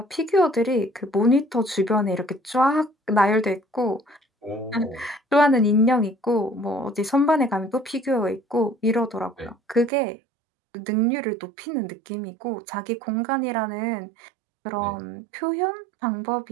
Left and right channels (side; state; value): left; drops out; at 9.9 s